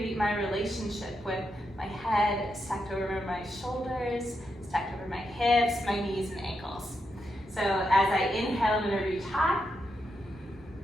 my relationship with my head stacked over my shoulders, stacked over my hips, my knees and ankles. So as I inhale, I'm going to reach high.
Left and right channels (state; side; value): normal; both; correlation 0.84